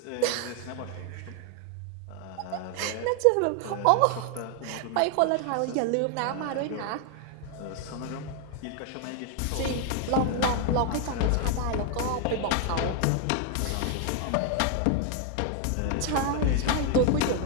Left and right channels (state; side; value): different; both; correlation 0.00